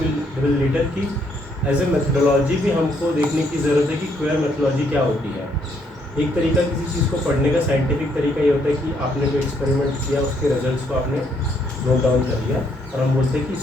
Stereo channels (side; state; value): both; normal; correlation 0.71